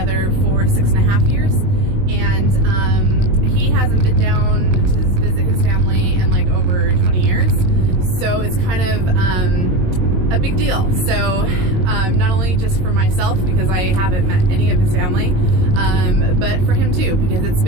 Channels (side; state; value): left; late; 22 ms